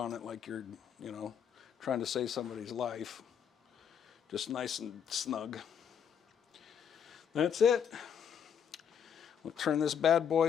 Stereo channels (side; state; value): right; quieter; 8.1 dB